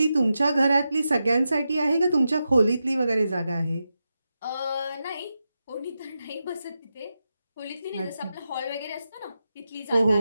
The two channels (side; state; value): both; inverted; correlation -0.89